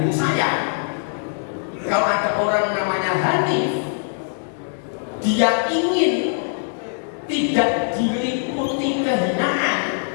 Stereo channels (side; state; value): right; silent; digital silence